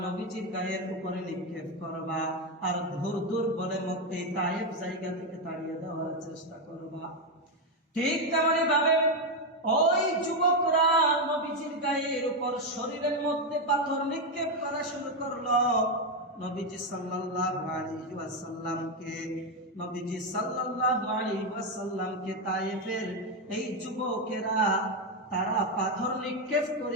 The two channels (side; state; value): both; normal; correlation 0.07